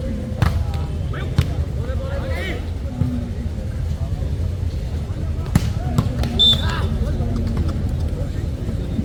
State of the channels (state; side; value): identical; both; correlation 1.00